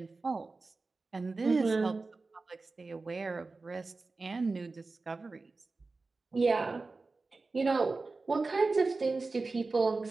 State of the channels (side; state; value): left; quieter; 3.7 dB